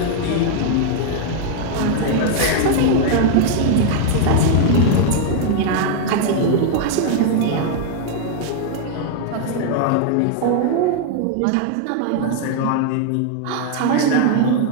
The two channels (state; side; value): different; both; correlation 0.00